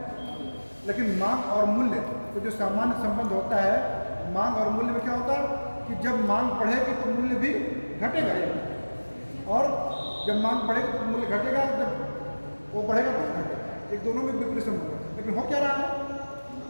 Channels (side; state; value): both; inverted; correlation -1.00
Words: लेकिन मांग और मूल्य तो जो सामान्य संबंध होता है, मांग और मूल्य में क्या होता है कि जब मांग बढ़ेगी तो मूल्य भी घटेगा, और जब मांग बढ़ेगी तो मूल्य घटेगा, जब वो बढ़ेगा तो घटेगा। एक दोनों में विपरीत संबंध है। लेकिन हो क्या रहा है?